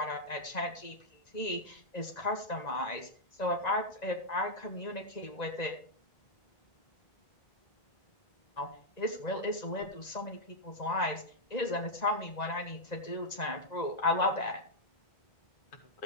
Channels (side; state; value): right; late; 1.9 ms